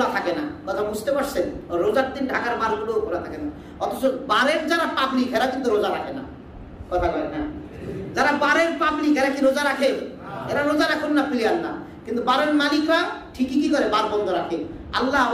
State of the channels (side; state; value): both; identical; correlation 1.00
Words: থাকে না, কথা বুঝতে পারছেন? রোজার দিন ঢাকার বারগুলো খোলা থাকে না, অথচ বারের যারা পাবলিক এরা কিন্তু রোজা রাখে না। কথা কয় না? যারা বারের পাবলিক এরা কি রোজা রাখে? এরা রোজা রাখুন না, প্লেয়ার না, কিন্তু বারের মালিকরা ঠিকই কি করে, বার বন্ধ রাখে। আল্লাহ